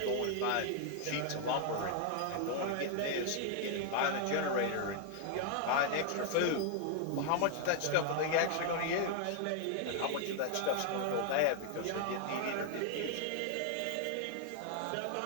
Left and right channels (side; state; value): both; different; correlation 0.00